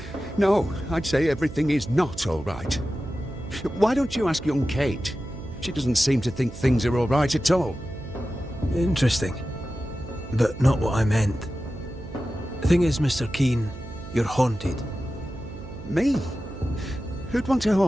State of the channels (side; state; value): right; noise; hum, 13 dB below the sound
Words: No, I'd say everything is not all right. Why don't you ask young Kate? She doesn't seem to think things are all right at all. Interesting. But not what I meant. The thing is, Mr. Keane, you're haunted. Me? Who'd want to